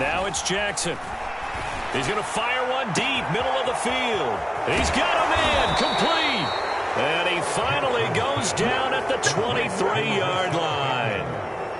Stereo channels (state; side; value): identical; both; correlation 1.00